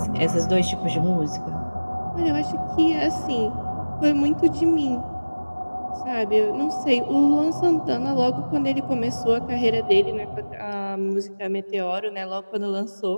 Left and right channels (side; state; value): both; inverted; correlation -1.00